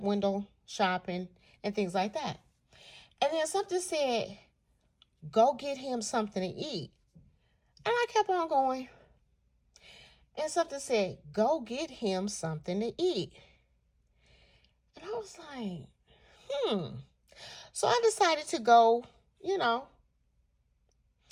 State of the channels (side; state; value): both; identical; correlation 1.00